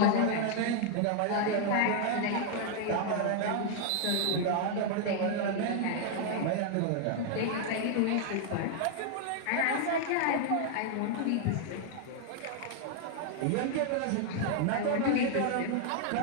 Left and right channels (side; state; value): both; different; correlation 0.00